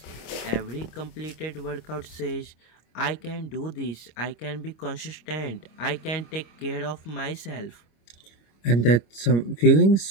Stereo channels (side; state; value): right; late; 26 ms